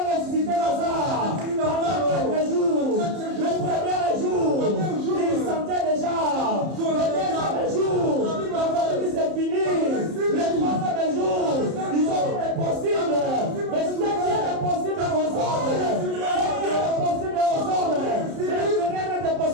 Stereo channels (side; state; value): left; late; 30 ms